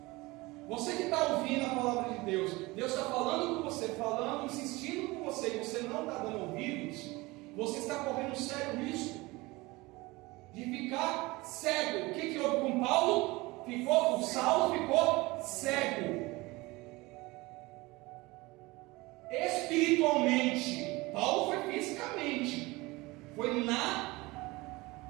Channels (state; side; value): quieter; left; 22.1 dB